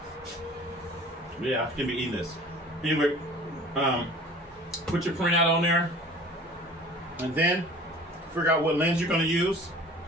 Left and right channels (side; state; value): both; normal; correlation 0.46